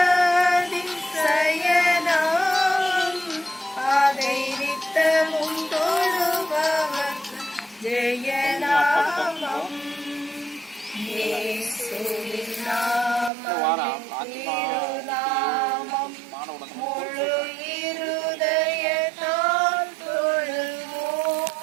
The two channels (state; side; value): drops out; left; at 13.3 s